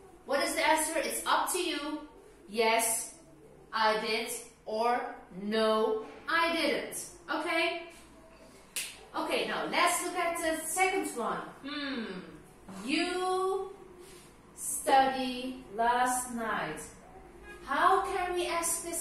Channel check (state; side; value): identical; both; correlation 1.00